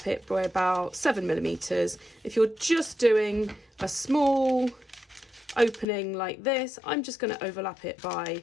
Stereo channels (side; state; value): right; drops out; at 5.9 s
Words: it by about 7 millimeters. If you're just doing a small opening like this, I'm just going to overlap it by